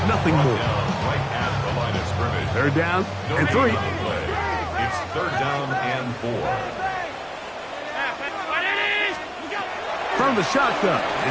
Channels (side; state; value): both; identical; correlation 1.00